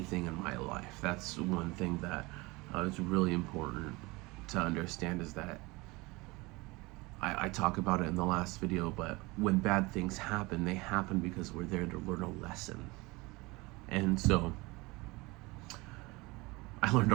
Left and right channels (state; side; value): quieter; left; 23.7 dB